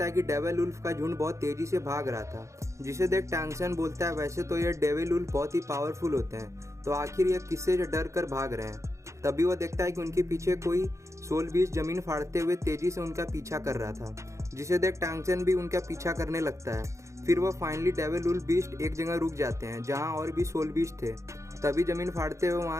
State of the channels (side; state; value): left; late; 0.14 ms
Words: है कि डेविल उल्फ का झुंड बहुत तेज़ी से भाग रहा था, जिसे देख टांगसन बोलता है वैसे तो ये डेविल उल्फ बहुत ही पावरफुल होते हैं, तो आखिर ये किससे डर कर भाग रहे हैं। तभी वो देखता है कि उनके पीछे कोई सोल बीस्ट जमीन फाड़ते हुए तेज़ी से उनका पीछा कर रहा था, जिसे देख टांगसन भी उनका पीछा करने लगता है। फिर वह फाइनली डेविल उल्फ बीस्ट एक जगह रुक जाते हैं जहाँ और भी सोल बीस्ट थे। तभी जमीन फाड़ते हुए